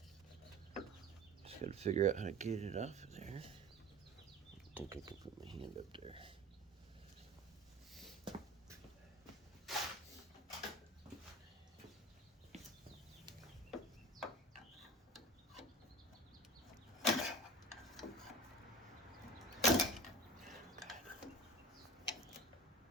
just gotta figure out how to get it off of there. I think I can put my hand up there.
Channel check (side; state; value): both; normal; correlation 0.37